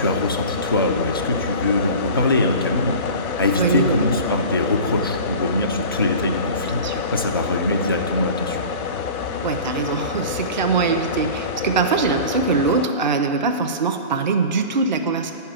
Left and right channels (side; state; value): both; inverted; correlation -0.35